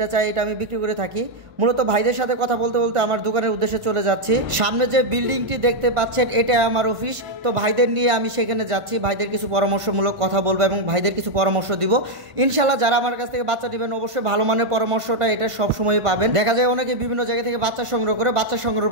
চাই এটা আমি বিক্রি করে থাকি। মূলত ভাইদের সাথে কথা বলতে বলতে আমার দোকানের উদ্দেশ্যে চলে যাচ্ছি। সামনে যে বিল্ডিংটি দেখতে পাচ্ছেন এটা আমার অফিস। তো ভাইদের নিয়ে আমি সেখানে যাচ্ছি, ভাইদের কিছু পরামর্শমূলক কথা বলবো এবং ভাইদের কিছু পরামর্শ দিব। ইনশাল্লাহ যারা আমার কাছ থেকে বাচ্চা নেবেন অবশ্যই ভালো মানের পরামর্শটা এটা সবসময় পাবেন। দেখা যায় অনেকে বিভিন্ন জায়গা থেকে বাচ্চা সংগ্রহ করে, বাচ্চা সংগ্রহ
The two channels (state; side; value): late; left; 1.4 ms